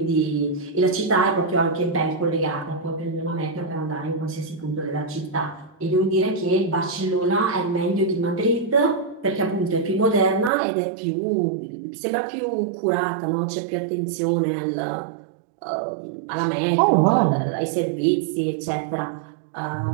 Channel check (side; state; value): left; drops out; at 10.5 s